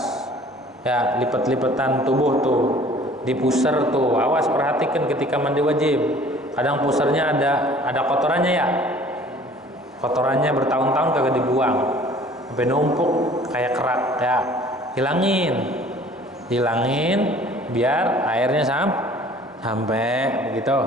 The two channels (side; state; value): both; normal; correlation 0.51